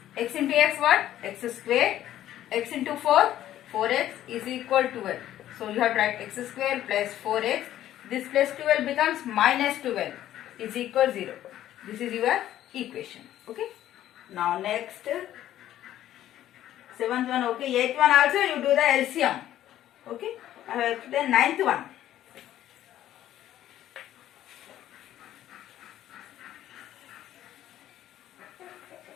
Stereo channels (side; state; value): right; quieter; 12.5 dB